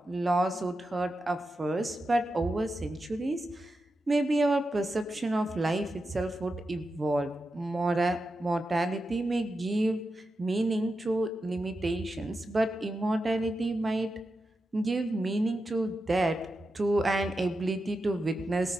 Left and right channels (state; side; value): normal; both; correlation 0.89